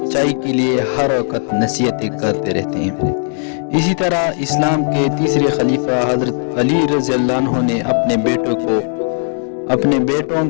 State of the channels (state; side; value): silent; right; digital silence